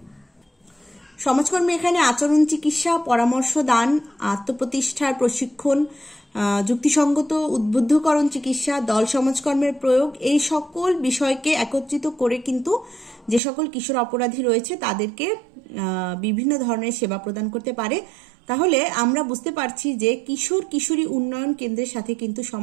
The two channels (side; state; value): left; drops out; at 13.4 s